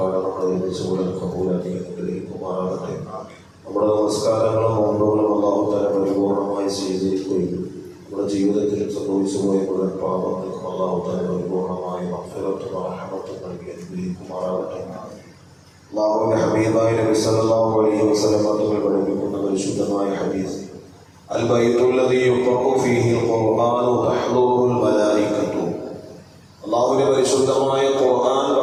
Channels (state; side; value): identical; both; correlation 1.00